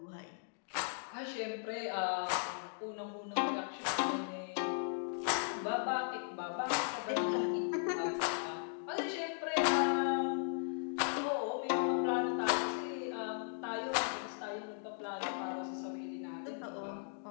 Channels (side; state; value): right; silent; digital silence